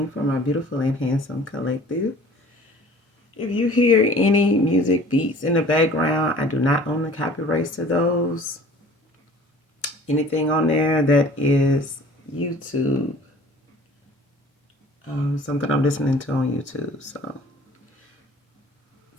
for my beautiful and handsome collective. If you hear any music beats in the background, I do not own the copyrights to those. Anything on there that is YouTube, something I'm listening to on YouTube. So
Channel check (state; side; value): normal; both; correlation 0.48